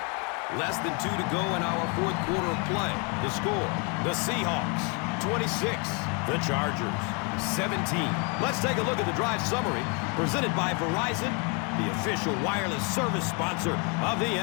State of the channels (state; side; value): quieter; right; 30.5 dB